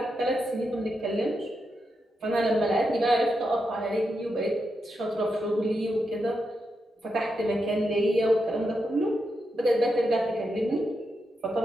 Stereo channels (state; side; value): normal; both; correlation 0.85